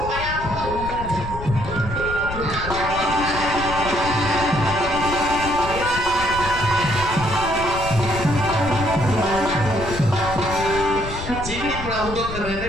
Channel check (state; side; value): noise; left; rumble, 9 dB below the sound